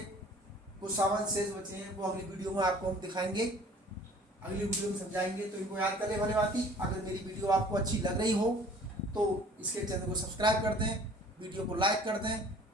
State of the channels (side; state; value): both; normal; correlation 0.50